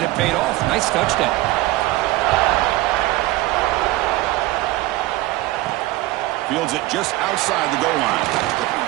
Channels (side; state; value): left; quieter; 18.2 dB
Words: it paid off. Nice touchdown. Fields it just outside the goal line.